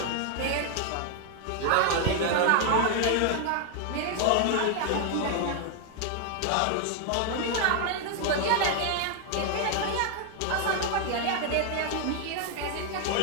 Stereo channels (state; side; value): different; both; correlation 0.00